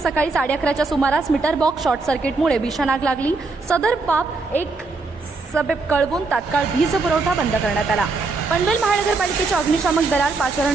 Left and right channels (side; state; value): left; quieter; 3.7 dB